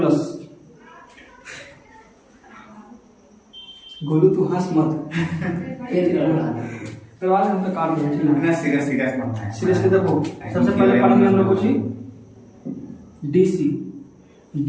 गोलू तू हंस मत। फिर आज हम तो काट देंगे ठीक है। ना सीरियस सीरियस मत है। सीरियसली देखो सबसे पहले पढ़ेंगे हम लोग कुछ डीसी।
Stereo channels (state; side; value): identical; both; correlation 1.00